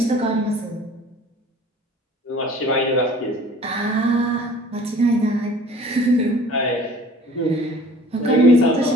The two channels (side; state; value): both; normal; correlation 0.48